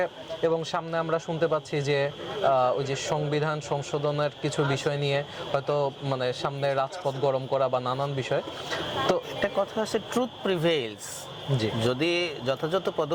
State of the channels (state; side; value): identical; both; correlation 1.00